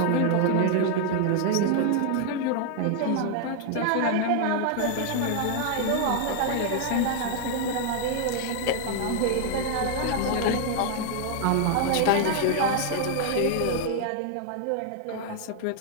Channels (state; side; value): different; both; correlation 0.00